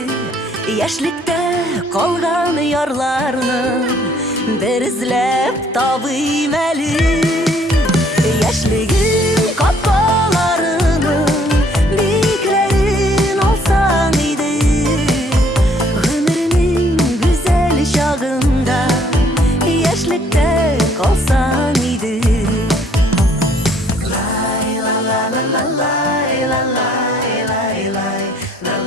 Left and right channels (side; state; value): both; normal; correlation 0.62